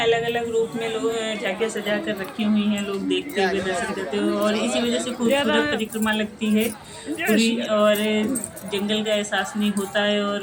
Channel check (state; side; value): identical; both; correlation 1.00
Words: अलग अलग रूप में लोग झांकियाँ सजा कर रखी हुई हैं, लोग देखते हुए दर्शन करते हुए, और इसी वजह से खूबसूरत परिक्रमा लगती है पूरी। और जंगल का एहसास नहीं होता है,